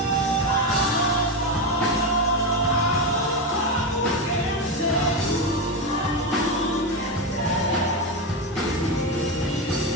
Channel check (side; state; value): both; normal; correlation 0.13